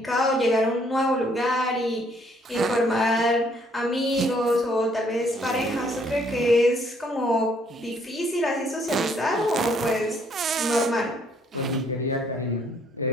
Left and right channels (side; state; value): both; normal; correlation 0.66